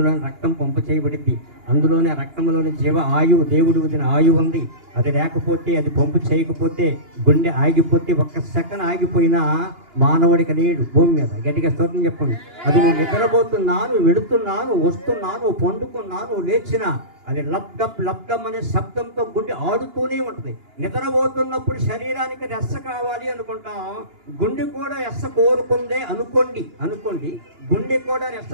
రక్తం పంపు చేయబడింది, అందులోనే రక్తంలోని జీవ ఆయువు, దేవుడు వదిన ఆయువు ఉంది. అది లేకపోతే, అది పంపు చేయకపోతే, గుండె ఆగిపోతే, ఒక్క సెకండ్ ఆగిపోయినా మానవుడికి లేడు భూమి మీద. గట్టిగా స్తోత్రం చెప్పండి. అది నువ్వు నిద్రపోతున్నాను, వెళుతున్నాను, వస్తున్నాను, పండుకున్నాను, లేచినా అది లబ్డప్ అనే శబ్దంతో గుండె ఆడుతూనే ఉంటుంది. నిద్రపోతున్నప్పుడు శరీరానికి రెస్స కావాలి అనుకుంటాం, గుండె కూడా రెస్స కోరుకుందే అనుకోండి గుండె కూడా రెస్స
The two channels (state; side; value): late; left; 2.9 ms